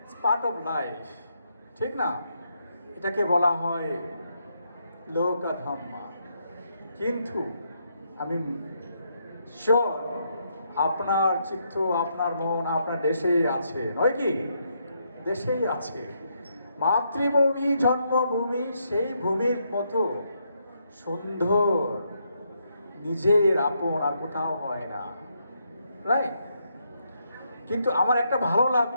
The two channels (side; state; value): both; inverted; correlation -0.77